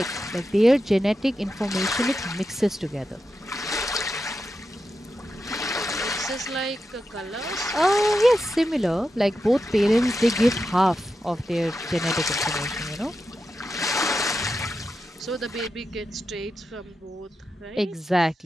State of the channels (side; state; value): both; normal; correlation 0.88